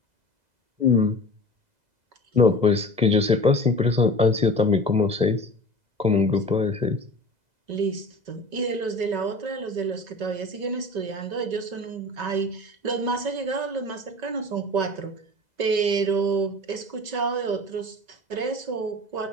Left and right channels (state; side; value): late; left; 2.0 ms